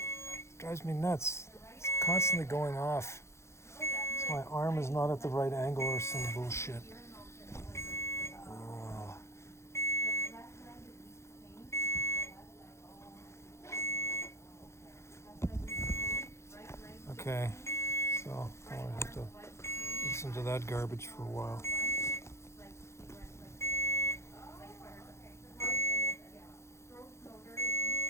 It drives me nuts. It's constantly going off. So my arm is not at the right angle or some bullshit. Okay, so I have to listen to that garbage for a while.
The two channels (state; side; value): late; right; 0.13 ms